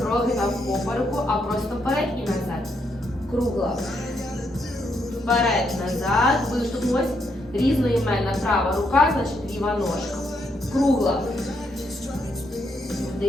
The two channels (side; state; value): both; normal; correlation 0.77